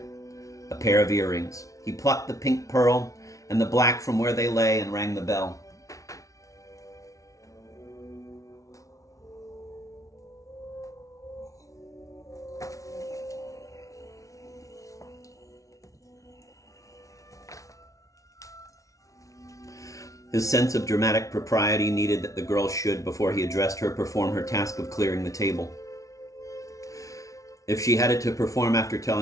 A pair of earrings. He plucked the pink pearl and the black from where they lay and rang the bell. His sense of dramatic propriety needed that the girl should, before he addressed her, perform her task of clearing the table. If she had it to perform after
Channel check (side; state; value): right; late; 0.16 ms